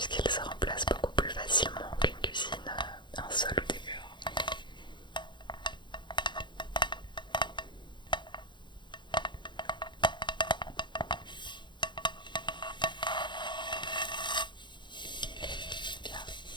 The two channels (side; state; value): right; late; 0.22 ms